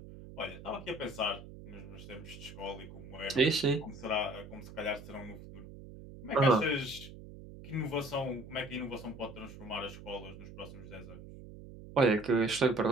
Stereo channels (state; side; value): noise; right; hum, 15 dB below the sound